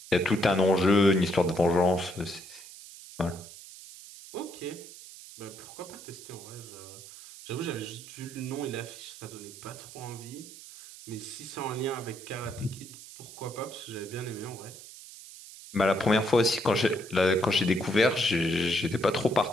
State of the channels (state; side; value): noise; right; hiss, 16 dB below the sound